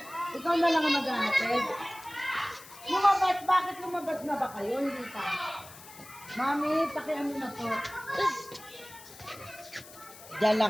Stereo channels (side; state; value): left; noise; hiss, 18 dB below the sound